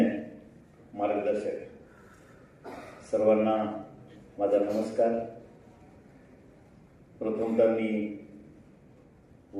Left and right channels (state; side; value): identical; both; correlation 1.00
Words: मार्गदर्शक, सर्वांना माझा नमस्कार. प्रथमतः मी